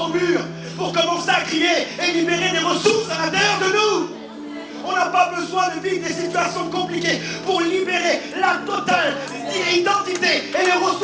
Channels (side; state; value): both; identical; correlation 1.00